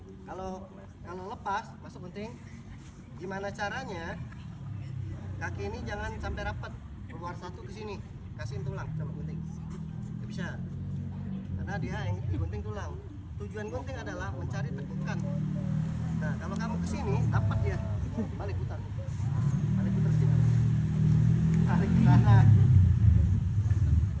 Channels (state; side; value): identical; both; correlation 1.00